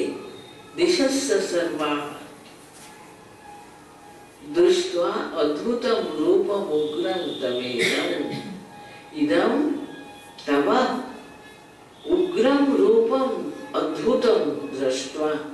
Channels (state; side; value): identical; both; correlation 1.00